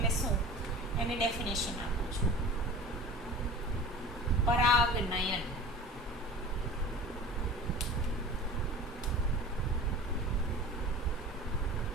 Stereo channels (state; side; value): normal; both; correlation 0.38